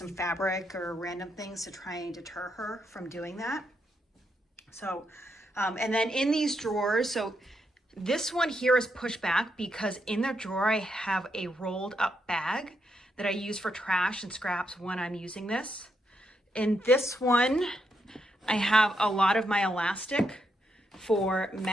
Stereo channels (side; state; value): both; normal; correlation 0.80